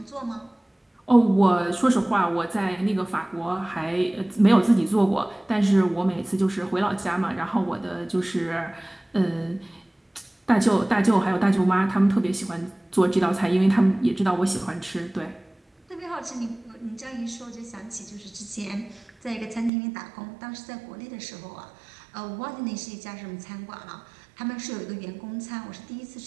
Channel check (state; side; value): drops out; left; at 19.7 s